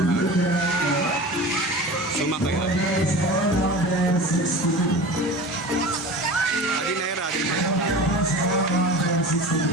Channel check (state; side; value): normal; both; correlation 0.34